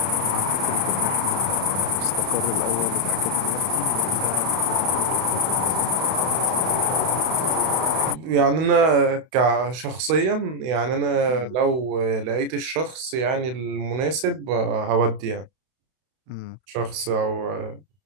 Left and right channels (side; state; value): left; late; 32 ms